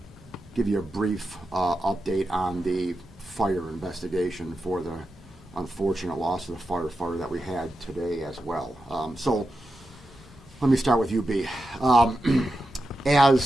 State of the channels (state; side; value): normal; both; correlation 0.89